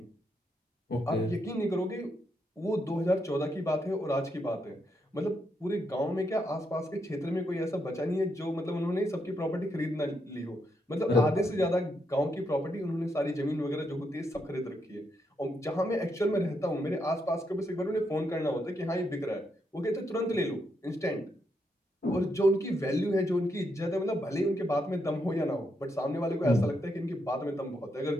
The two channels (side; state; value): both; normal; correlation 0.80